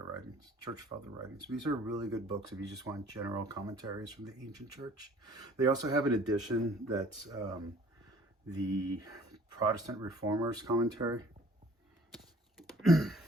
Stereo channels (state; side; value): normal; both; correlation 0.53